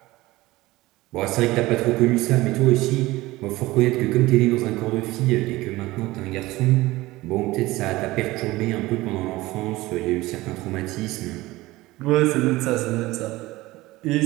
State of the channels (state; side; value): quieter; left; 19.0 dB